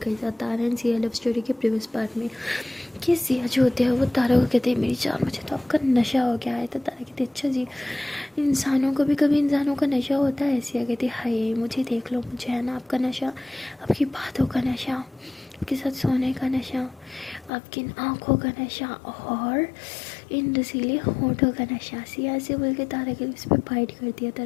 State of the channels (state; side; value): drops out; right; at 17.5 s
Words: ही था तारा एंड सिया लव स्टोरी के प्रीवियस पार्ट में कि सिया जो होते हैं वो तारा को कहते हैं मेरी जान, मुझे तो आपका नशा हो गया है। तो तारा कहते अच्छा जी, इंसानों को भी कभी इंसानों का नशा होता है। सिया कहती हाय मुझे देख लो, मुझे है ना आपका नशा, आपकी बातों का नशा, आपके साथ सोने का नशा, आपकी आँखों का नशा और इन रसीले होठों का नशा। सिया से बोल के तारा के उस पर फाइट कर दिया।